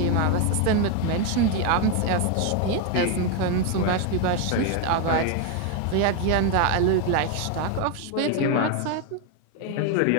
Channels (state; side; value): different; both; correlation 0.01